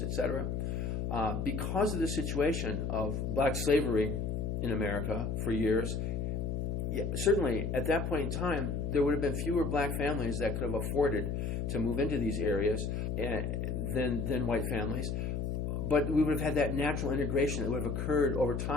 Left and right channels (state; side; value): noise; left; hum, 1 dB below the sound